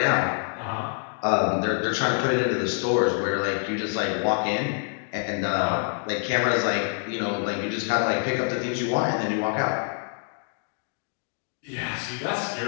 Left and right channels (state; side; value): silent; right; 56 dB below the other